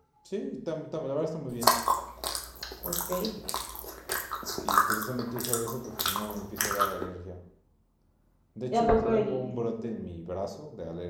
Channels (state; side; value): identical; both; correlation 1.00